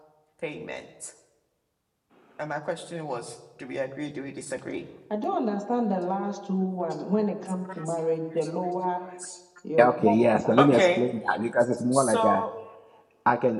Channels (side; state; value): both; identical; correlation 1.00